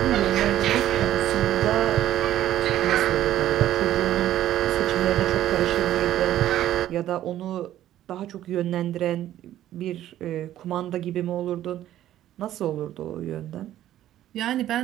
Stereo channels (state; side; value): quieter; left; 12.7 dB